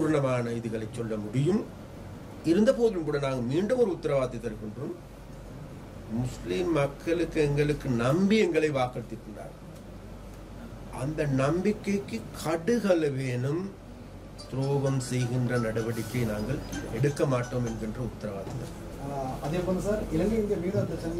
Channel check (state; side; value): identical; both; correlation 1.00